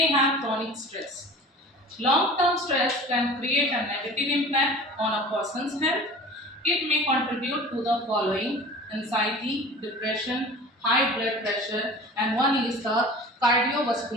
have chronic stress. Long-term stress can create a negative impact on a person's health. It may contribute to the following: anxiety, depression, high blood pressure, and one is the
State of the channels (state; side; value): normal; both; correlation 0.40